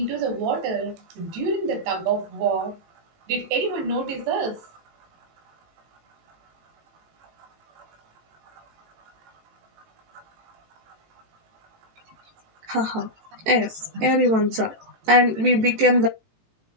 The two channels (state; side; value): late; left; 18 ms